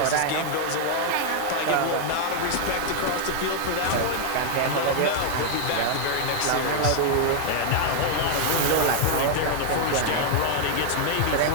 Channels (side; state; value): both; different; correlation 0.00